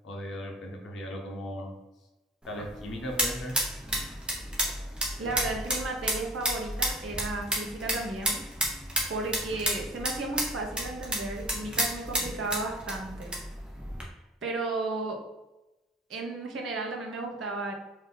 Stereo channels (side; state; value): both; normal; correlation 0.42